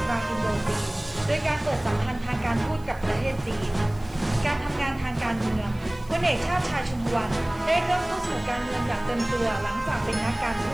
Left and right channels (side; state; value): right; noise; hiss, 27 dB below the sound